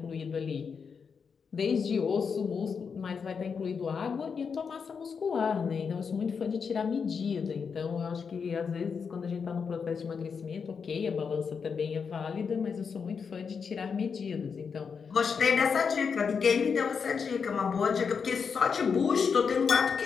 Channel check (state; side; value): quieter; right; 6.0 dB